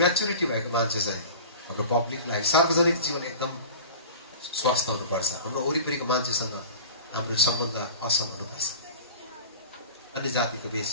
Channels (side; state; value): both; inverted; correlation -0.37